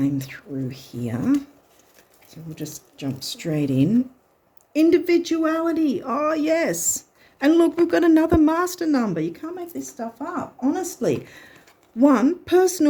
through here. So we'll just jump straight in. Individuality. Oh, yes. And look, we've got another master number. You can't make this stuff up, honestly. 1,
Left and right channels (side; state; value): both; identical; correlation 1.00